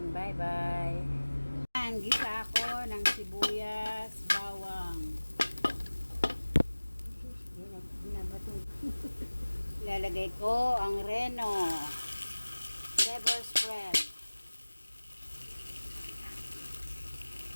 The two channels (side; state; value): both; inverted; correlation -1.00